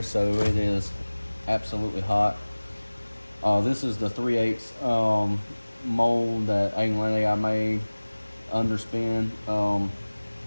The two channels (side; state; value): both; inverted; correlation -1.00